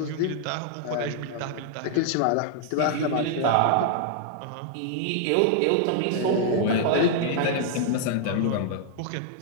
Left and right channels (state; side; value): different; both; correlation 0.00